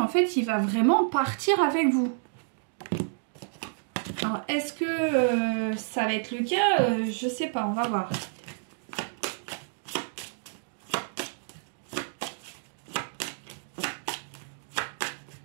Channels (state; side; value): silent; left; digital silence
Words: fait il va vraiment partir avec vous. Alors est-ce que ça va être le cas? Je sais pas, on va voir.